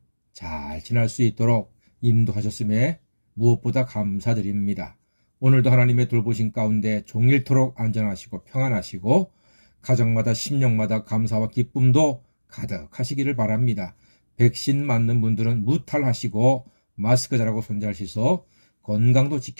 잘 지날 수 있도록 인도하셨음에 무엇보다 감사드립니다. 오늘도 하나님의 돌보신 가운데 종일토록 안전하시고 평안하시고 가정마다 심령마다 감사와 기쁨도 가득하시기를 바랍니다. 백신 맞는 분들은 무탈하시고 마스크 잘하고 손 잘 씻어 건강도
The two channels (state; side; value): inverted; both; correlation -1.00